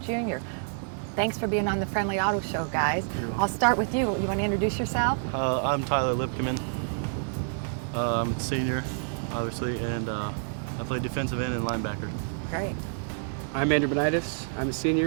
junior. Thanks for being on the Friendly Auto Show, guys. I'll start with you. You want to introduce yourself? I'm Tyler Lipkeman. I'm a senior, obviously, and I play defensive end and linebacker. Great. I'm Andrew Benitis. I'm a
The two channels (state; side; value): silent; left; digital silence